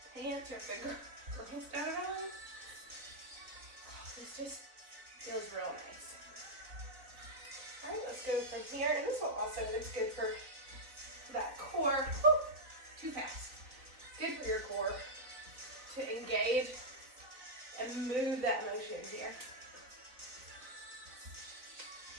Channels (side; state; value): left; late; 4.0 ms